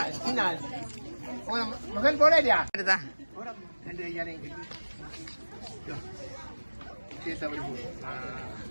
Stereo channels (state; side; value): inverted; both; correlation -1.00